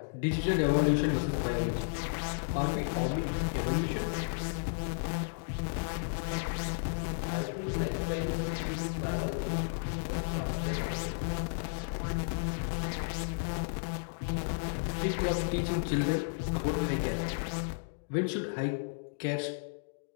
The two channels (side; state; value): right; silent; digital silence